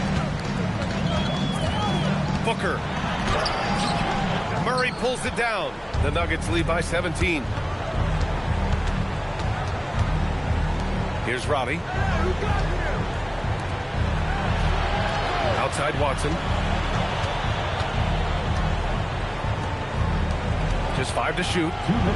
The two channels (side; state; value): both; identical; correlation 1.00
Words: Booker. Murray pulls it down. The Nuggets lead by 17. Here's Robbie. Outside Watson. Just 5 to shoot.